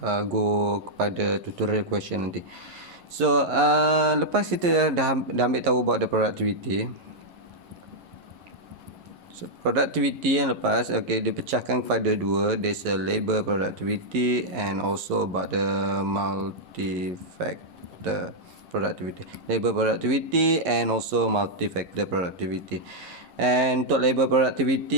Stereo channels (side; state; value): left; late; 11 ms